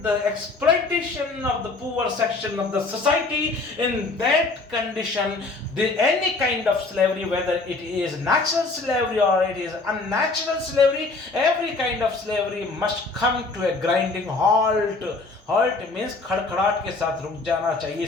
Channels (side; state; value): right; quieter; 3.6 dB